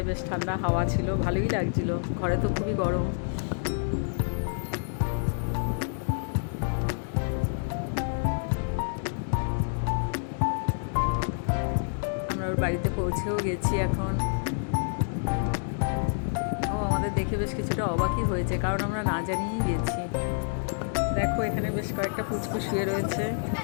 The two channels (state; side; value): silent; right; digital silence